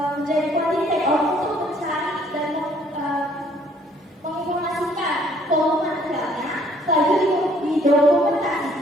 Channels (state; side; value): normal; both; correlation 0.62